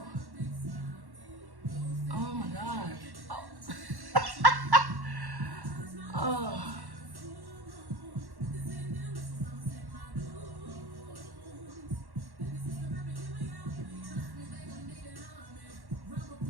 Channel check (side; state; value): left; late; 1.1 ms